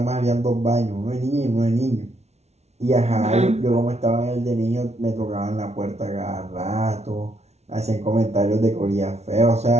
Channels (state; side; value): late; left; 0.31 ms